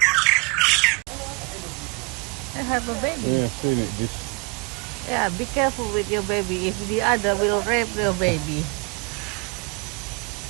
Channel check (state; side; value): quieter; left; 30.1 dB